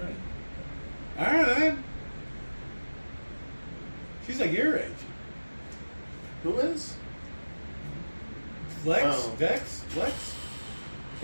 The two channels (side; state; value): both; inverted; correlation -1.00